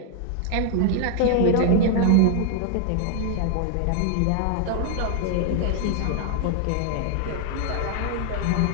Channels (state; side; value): different; both; correlation 0.00